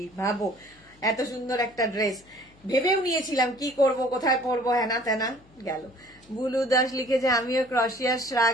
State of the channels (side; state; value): left; noise; hum, 28 dB below the sound